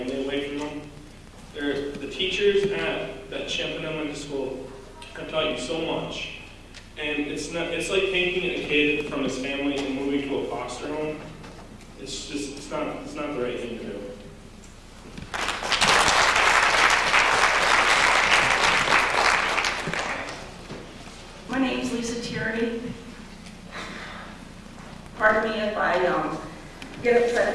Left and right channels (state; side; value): identical; both; correlation 1.00